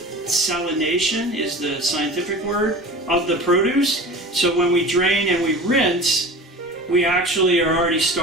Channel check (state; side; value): normal; both; correlation 0.37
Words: salination is the scientific word of the produce. So when we drain and we rinse, we actually are already